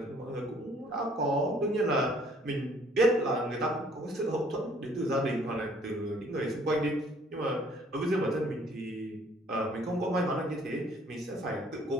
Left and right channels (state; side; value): normal; both; correlation 0.60